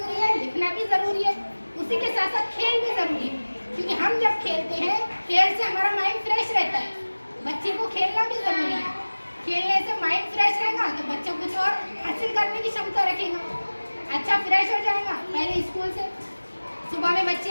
है, लिखना भी ज़रूरी है, उसी के साथ साथ खेल भी ज़रूरी है, क्योंकि हम जब खेलते हैं, खेल से हमारा माइंड फ्रेश रहता है। बच्चे को खेलना भी ज़रूरी है, खेलने से माइंड फ्रेश रहेगा तो बच्चा कुछ और हासिल करने की क्षमता रखेगा, अच्छा फ्रेश हो जाएगा। पहले स्कूल से सुबह में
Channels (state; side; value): inverted; both; correlation -1.00